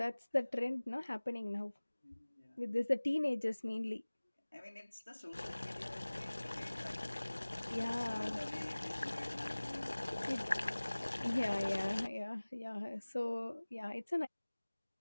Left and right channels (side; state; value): both; inverted; correlation -1.00